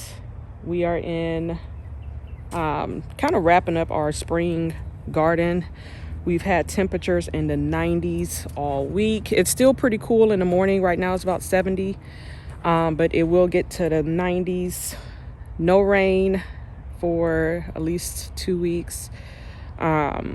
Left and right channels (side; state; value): both; identical; correlation 1.00